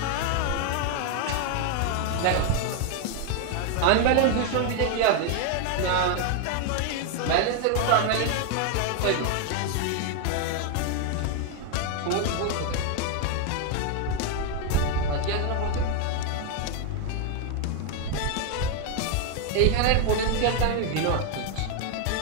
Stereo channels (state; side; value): different; both; correlation 0.01